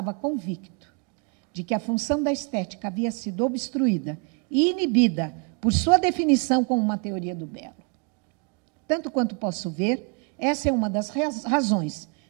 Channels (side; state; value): left; quieter; 35.6 dB